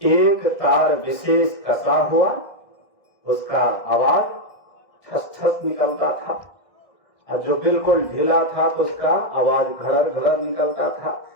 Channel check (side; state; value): right; late; 1.6 ms